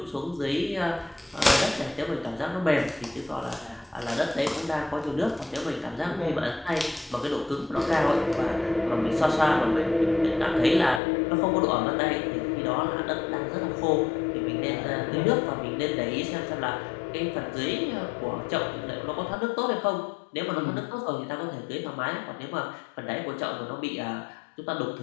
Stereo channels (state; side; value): drops out; right; at 11.0 s